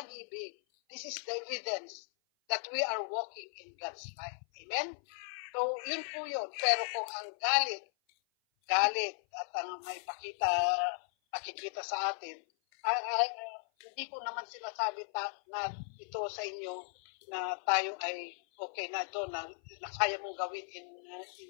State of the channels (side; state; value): right; silent; 53 dB below the other